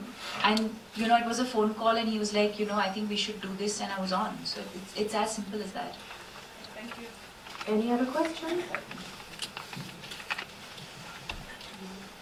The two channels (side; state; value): both; identical; correlation 1.00